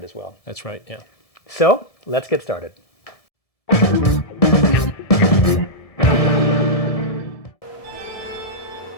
as well. That's right, yeah. So, let's get started.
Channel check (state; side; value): late; right; 1.7 ms